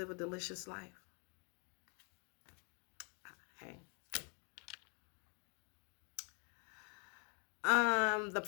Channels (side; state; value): right; quieter; 36.5 dB